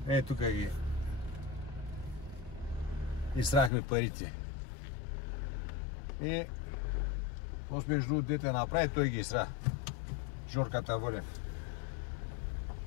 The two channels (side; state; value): right; drops out; at 3.7 s